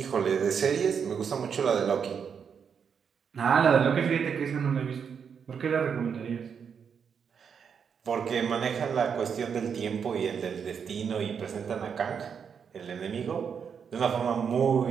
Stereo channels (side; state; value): left; quieter; 6.9 dB